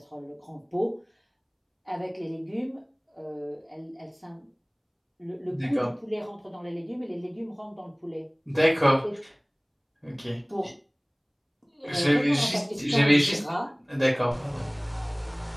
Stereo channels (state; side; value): identical; both; correlation 1.00